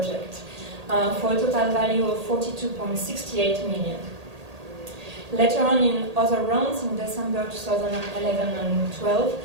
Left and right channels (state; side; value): late; left; 1.8 ms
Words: for a total value of 42.68 million. Later on in other rounds, in December 2011 and 12,